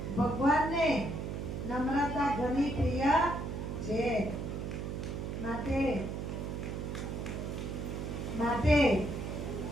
ભગવાનને નમ્રતા ઘણી પ્રિય છે.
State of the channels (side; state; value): right; noise; hum, 4 dB below the sound